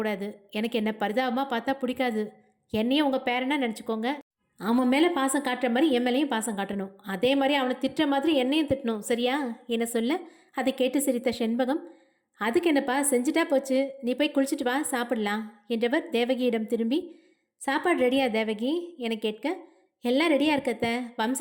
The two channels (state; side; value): identical; both; correlation 1.00